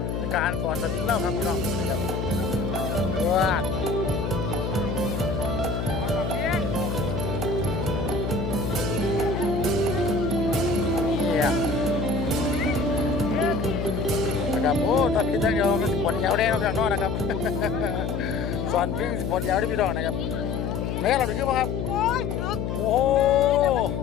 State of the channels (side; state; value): left; noise; hum, 2 dB below the sound